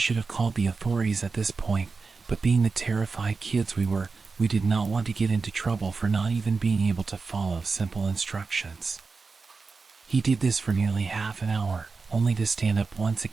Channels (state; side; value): quieter; left; 4.4 dB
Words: have called the authorities at this point, but being the terrified kids we were, we did not want to get into trouble for not even being able to follow simple instructions. He did this for nearly half an hour, only to stand up once